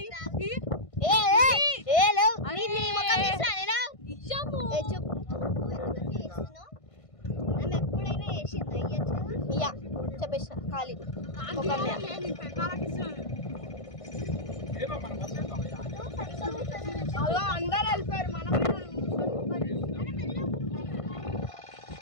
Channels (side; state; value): right; late; 1.5 ms